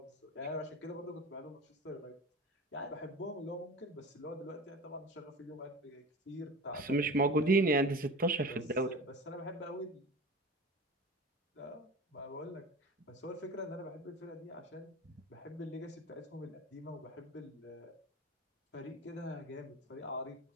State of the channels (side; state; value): both; normal; correlation 0.35